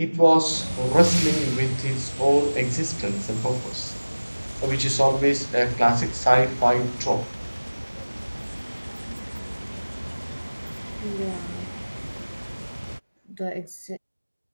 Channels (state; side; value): inverted; both; correlation -1.00